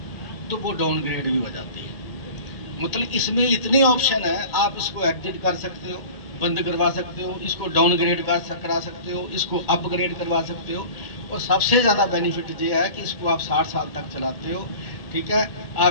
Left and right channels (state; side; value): late; right; 2.4 ms